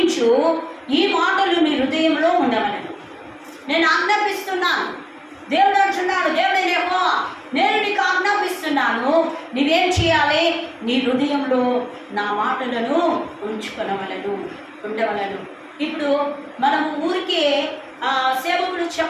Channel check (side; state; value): both; identical; correlation 1.00